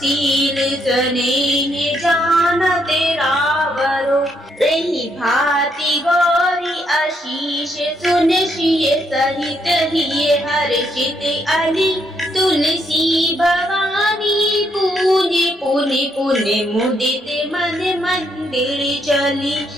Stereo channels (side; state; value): both; normal; correlation 0.75